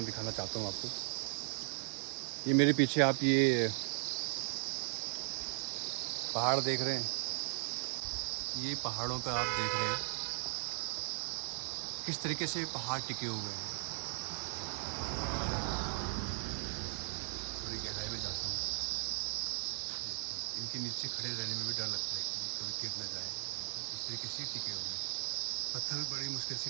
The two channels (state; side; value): silent; left; digital silence